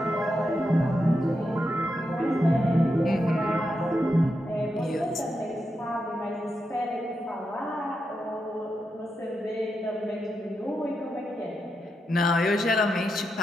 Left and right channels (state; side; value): normal; both; correlation 0.85